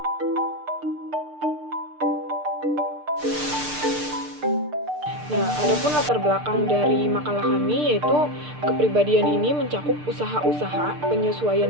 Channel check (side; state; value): left; late; 6.7 ms